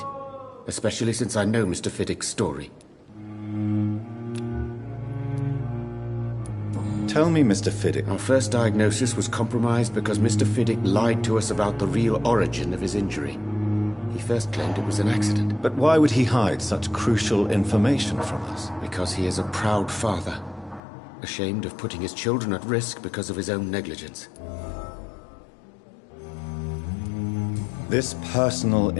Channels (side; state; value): right; drops out; at 20.8 s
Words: Especially since I know Mr. Fiddick's story. Tell me, Mr. Fiddick. Our first diagnosis was compromised because Mr. Fiddick lied to us about the real origin of his injury. He first claimed it was an accident. But why would he hide such crucial information from us? Because he is a proud father, ashamed of putting his children at risk because of his own negligence. This personal